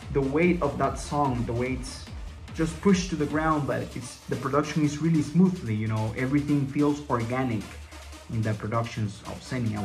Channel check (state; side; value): identical; both; correlation 1.00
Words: the weight of that song, the way it's just pushed to the ground, but the production is really smoothly. Everything feels organic in the productions of Xenia, I